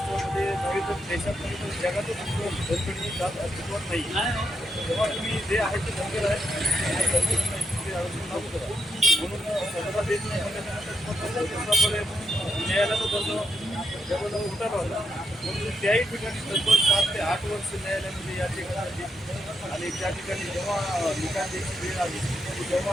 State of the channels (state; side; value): normal; both; correlation 0.81